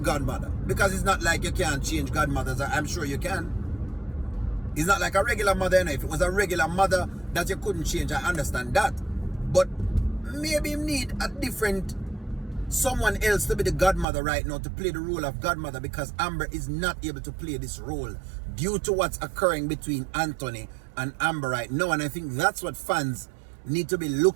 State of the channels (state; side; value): drops out; left; at 14.1 s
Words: Because it's not like you can't change godmothers. I'm sure you can. It's not like a regular mother. If it was a regular mother that you couldn't change, I understand that. But maybe him need a different someone else to be the godmother right now, to play the role of godmother, because Amber is not able to play this role due to what's occurring between Anthony and Amber right now. And I think that's what fans need to be